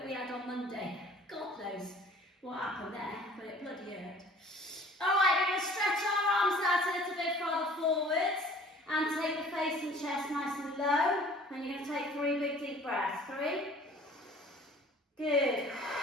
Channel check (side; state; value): both; normal; correlation 0.50